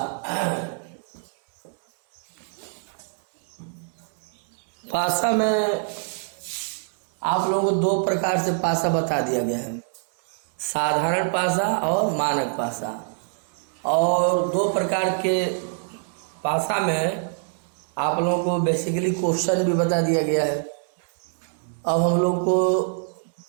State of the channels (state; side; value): silent; left; 62 dB below the other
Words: पासा में आप लोगों को दो प्रकार से पासा बता दिया गया है, साधारण पासा और मानक पासा। और दो प्रकार के पासा में आप लोगों को बेसिकली क्वेश्चन भी बता दिया गया है। अब हम लोग को